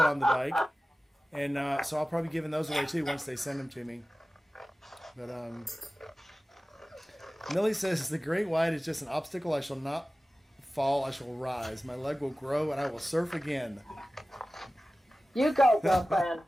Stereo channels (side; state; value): both; normal; correlation 0.96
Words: the bike, and so I'll probably be giving those away too once they send them to me. But Millie says the great white is just an obstacle. I shall not fall. I shall rise. My leg will grow, and I will surf again. You go, girlfriend.